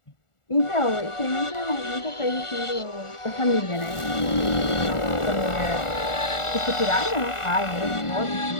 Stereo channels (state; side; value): late; right; 1.4 ms